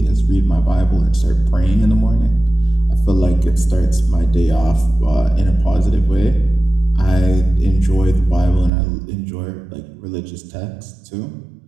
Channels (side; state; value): left; drops out; at 8.7 s